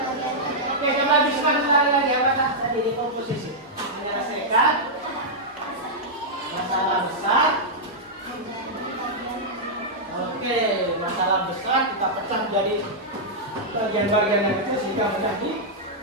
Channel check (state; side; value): normal; both; correlation -0.07